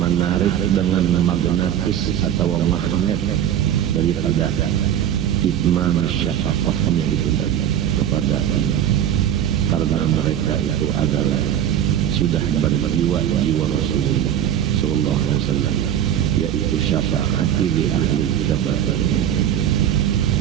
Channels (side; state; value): left; quieter; 10.4 dB